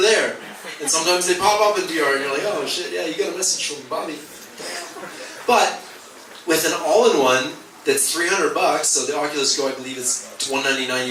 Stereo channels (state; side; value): identical; both; correlation 1.00